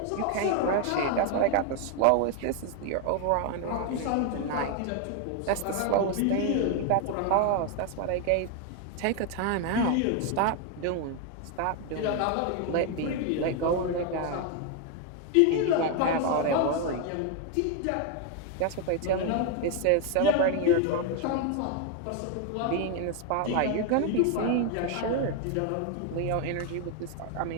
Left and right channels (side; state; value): both; different; correlation 0.01